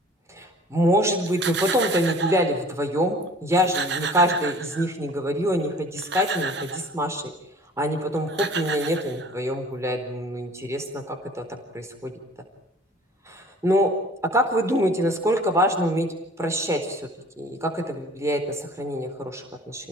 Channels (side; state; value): both; normal; correlation 0.48